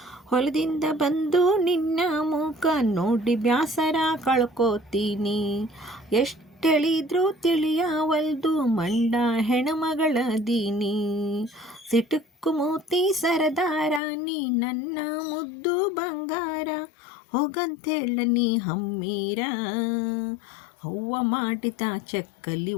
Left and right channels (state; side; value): drops out; right; at 14.0 s